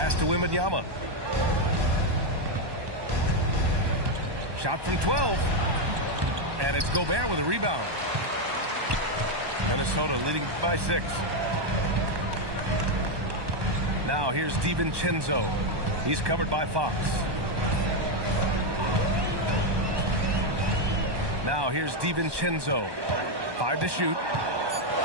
to Wembanyama. Shot from 12. And it's Gobert with a rebound. Minnesota leading by 6. Now here's DiVincenzo. He's covered by Fox. Now here's DiVincenzo. 5 to shoot.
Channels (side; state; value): left; late; 1.2 ms